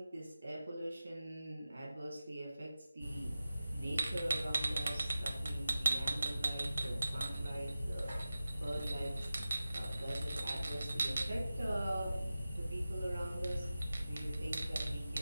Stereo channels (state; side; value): inverted; both; correlation -0.94